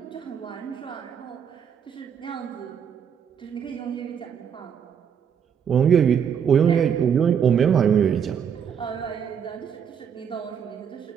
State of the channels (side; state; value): left; quieter; 7.7 dB